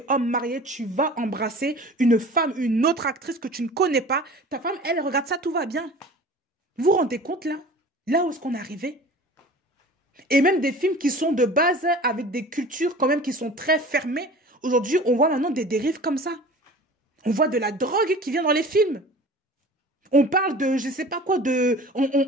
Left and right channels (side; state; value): both; normal; correlation 0.41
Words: homme marié, tu vas embrasser une femme, une autre actrice que tu ne connais pas? Ta femme, elle regarde ça, tout va bien. Vous vous rendez compte, là? Là où est-ce qu'on est arrivé? Et même des films qui sont de base avec des cultures quand même qui sont très fermées. Aujourd'hui, on voit maintenant des dérives comme ça. On voit de la drogue qui vient dans les films. On parle de, je sais pas quoi,